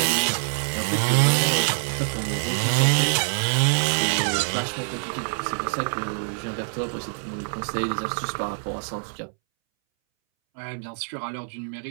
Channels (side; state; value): left; silent; 62 dB below the other